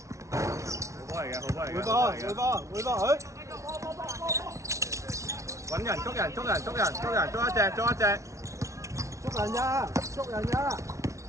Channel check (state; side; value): late; left; 0.14 ms